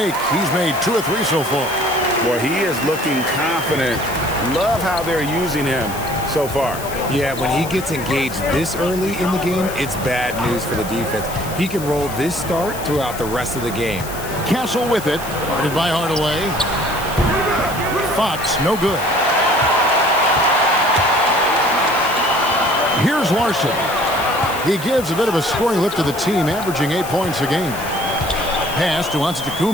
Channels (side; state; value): left; noise; hiss, 13 dB below the sound